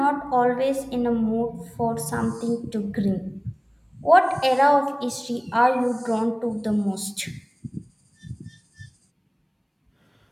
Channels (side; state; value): both; identical; correlation 1.00